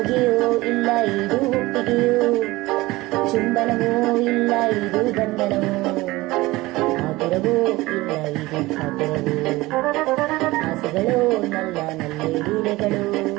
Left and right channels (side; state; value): left; quieter; 19.9 dB